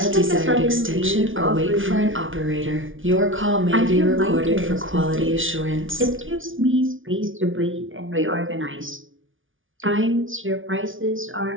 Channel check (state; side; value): late; left; 0.57 ms